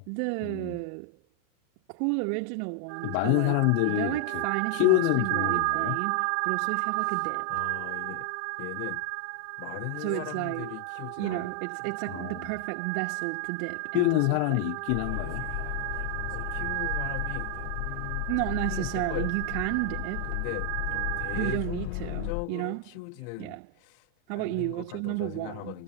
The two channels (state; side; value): different; both; correlation 0.00